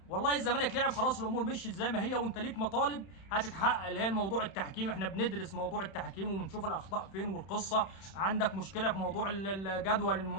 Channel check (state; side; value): late; right; 31 ms